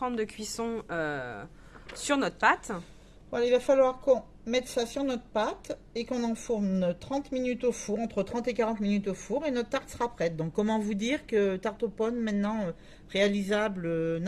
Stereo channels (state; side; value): identical; both; correlation 1.00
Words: de cuisson sur notre pâte. Voilà, il va falloir qu'on mette ça sur notre pâte et qu'on enfourne 30 minutes au four, entre 30 et 40 minutes au four, et notre tarte sera prête. Donc comment vous dire que tarte aux pommes maintenant réalisable